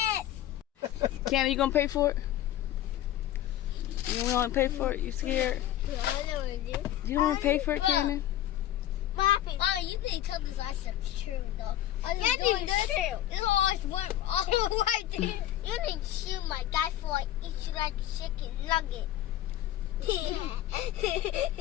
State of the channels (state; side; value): quieter; right; 12.9 dB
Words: Ken, are you gonna pay for it? You don't want to pay for it? You scared? I know what to do. You don't want to pay for it, Cannon? Oh, you need to tell this last stuff's true though. Yeah, doing this. This always went all right there. You need to shoot my guy for like eat you like a chicken nugget.